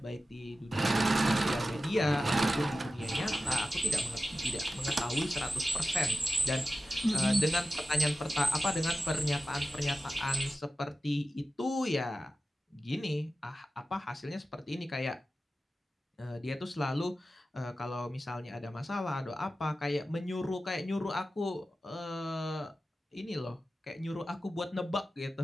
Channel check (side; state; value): both; normal; correlation 0.93